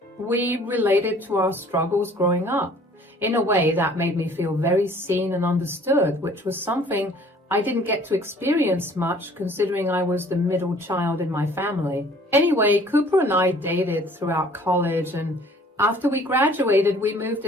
we related to our struggles growing up in a way that made me feel very seen and understood, which was something I didn't get to experience much considering I was the middle child in my family. Anyway, Cooper and I dated throughout college, and after we graduated, we moved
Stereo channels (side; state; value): both; normal; correlation 0.54